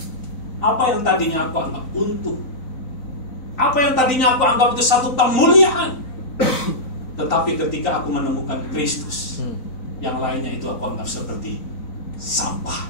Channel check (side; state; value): right; late; 3.9 ms